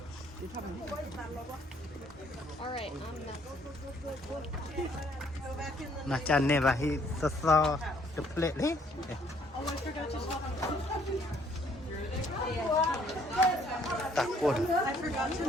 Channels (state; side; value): normal; both; correlation 0.64